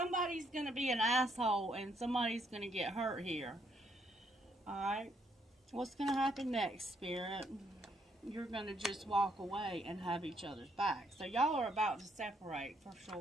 going to be an asshole and somebody's going to get hurt here. Alright, what's going to happen next, Spirit? You're going to just walk away and have each other's back. So y'all are about to separate for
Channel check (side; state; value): both; normal; correlation 0.72